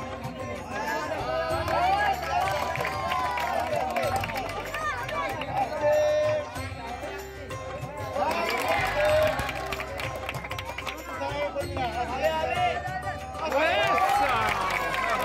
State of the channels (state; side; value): identical; both; correlation 1.00